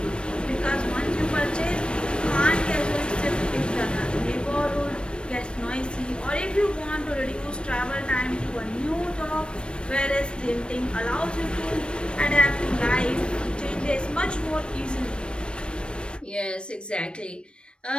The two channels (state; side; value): late; right; 0.056 ms